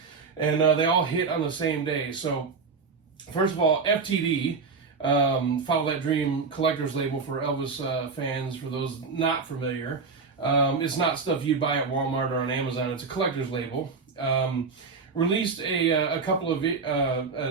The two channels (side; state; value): left; quieter; 4.8 dB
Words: and they all hit on the same day. So first of all, FTD, Follow That Dream collector's label for Elvis fans, for those not familiar. It's not stuff you'd buy at Walmart or on Amazon. It's a collector's label. Released a couple of